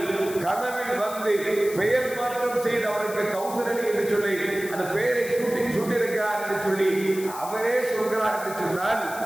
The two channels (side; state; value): left; noise; hiss, 13 dB below the sound